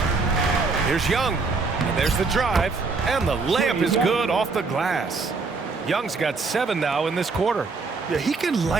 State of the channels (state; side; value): quieter; left; 4.2 dB